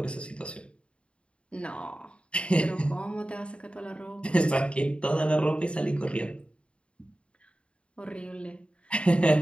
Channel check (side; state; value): right; late; 0.057 ms